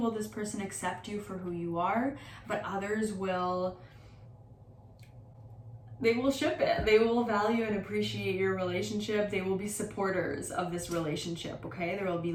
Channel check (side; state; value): both; identical; correlation 1.00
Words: this person accept you for who you are, but others will ship it. They will value and appreciate your relationship. They will be supporters of this relationship, okay? There will be